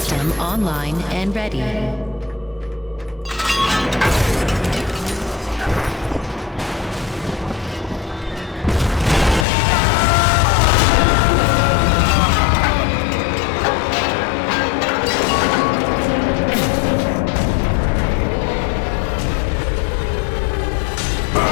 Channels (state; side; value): drops out; right; at 9.5 s